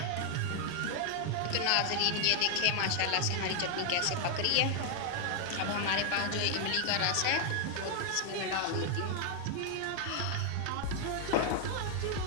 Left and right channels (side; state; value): both; different; correlation 0.00